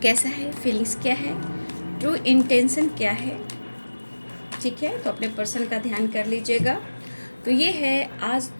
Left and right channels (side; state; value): both; inverted; correlation -1.00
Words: है, फीलिंग्स क्या है, ट्रू इंटेंशन क्या है। ठीक है, तो अपने पर्सन का ध्यान कर लीजिएगा। तो ये है आज